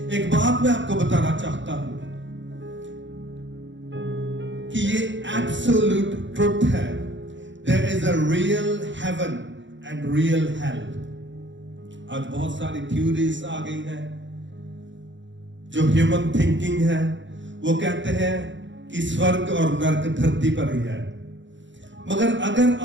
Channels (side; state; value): left; late; 0.54 ms